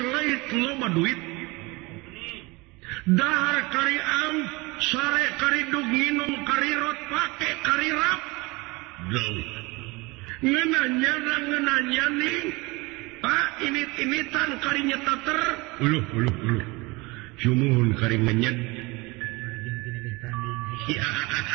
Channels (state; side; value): quieter; left; 24.6 dB